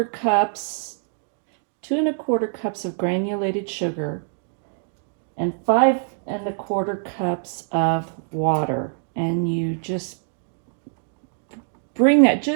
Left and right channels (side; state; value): left; silent; digital silence